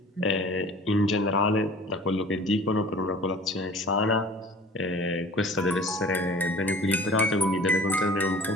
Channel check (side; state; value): both; normal; correlation 0.45